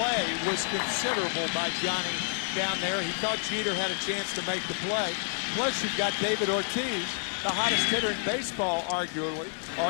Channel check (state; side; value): silent; right; digital silence